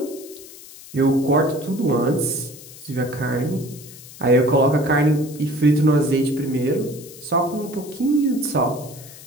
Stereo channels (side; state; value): left; noise; hiss, 18 dB below the sound